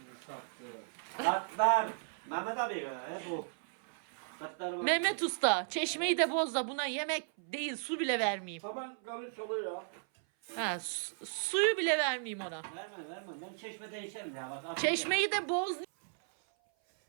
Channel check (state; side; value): silent; left; 54 dB below the other